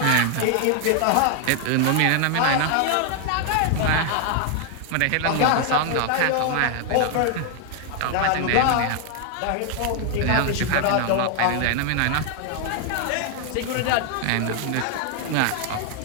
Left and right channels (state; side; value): different; both; correlation 0.00